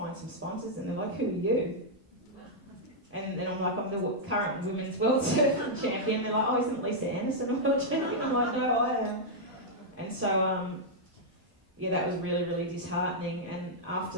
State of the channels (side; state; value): both; normal; correlation -0.06